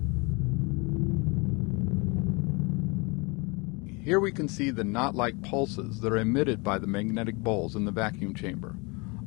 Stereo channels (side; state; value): right; quieter; 28.9 dB